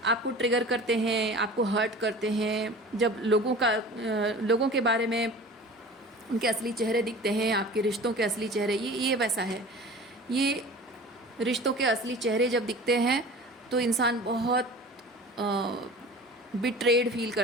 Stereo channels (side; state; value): both; normal; correlation 0.40